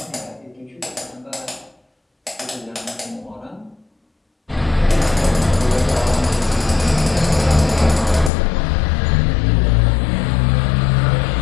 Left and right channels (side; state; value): right; drops out; at 8.3 s